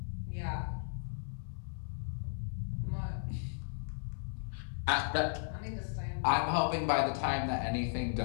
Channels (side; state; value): right; silent; digital silence